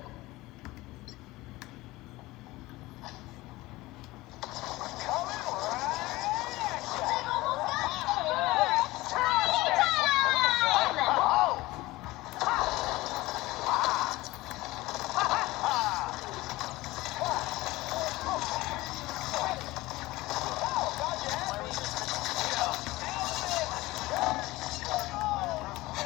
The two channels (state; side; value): quieter; right; 19.4 dB